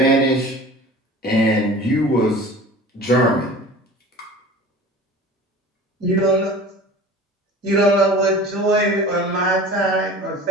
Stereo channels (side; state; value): both; normal; correlation 0.41